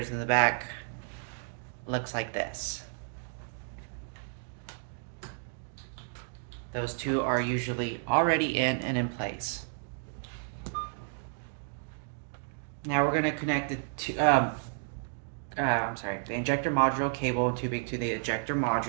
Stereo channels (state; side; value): silent; left; 57 dB below the other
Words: in the back looks like this. Those two are usually already in and in place. Now we're going to connect the injector module cable and tubing to the ejector